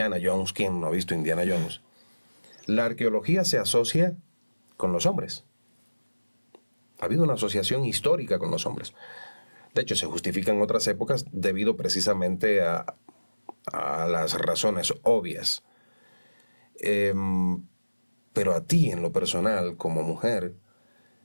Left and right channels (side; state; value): both; inverted; correlation -1.00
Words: Jones, ¿quién no ha visto Indiana Jones? La arqueología se asocia con los hombres. Ha habido una asociación histórica con los hombres. De hecho, se justifica en otras épocas debido precisamente a las razones obvias. Pero a ti, en lo personal, como mujer,